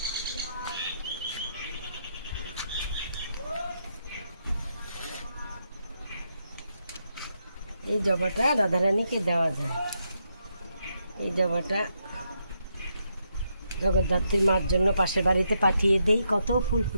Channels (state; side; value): inverted; both; correlation -0.80